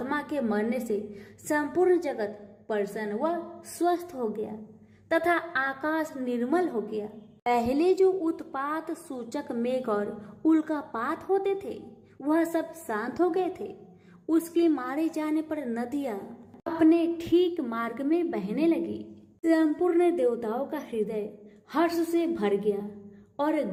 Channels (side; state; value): both; identical; correlation 1.00